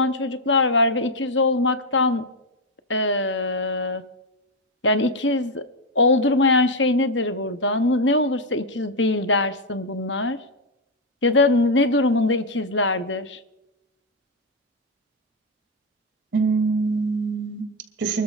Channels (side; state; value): both; normal; correlation 0.04